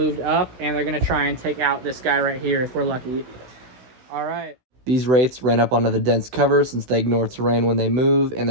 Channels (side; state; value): left; late; 16 ms